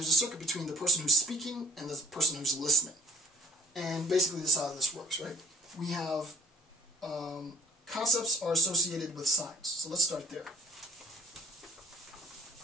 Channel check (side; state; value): both; normal; correlation 0.55